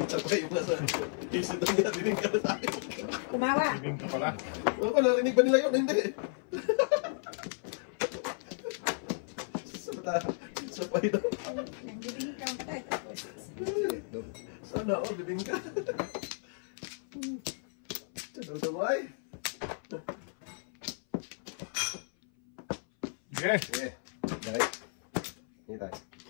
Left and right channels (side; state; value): right; silent; 56 dB below the other